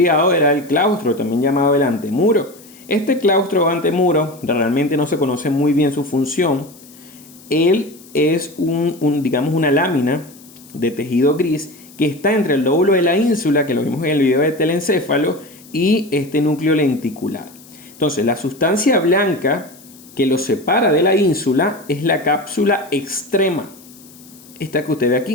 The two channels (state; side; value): noise; left; hiss, 23 dB below the sound